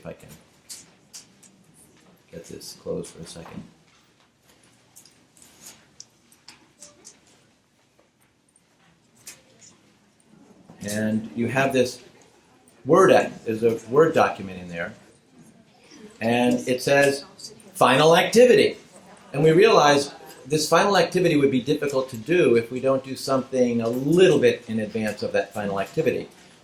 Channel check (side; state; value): both; identical; correlation 1.00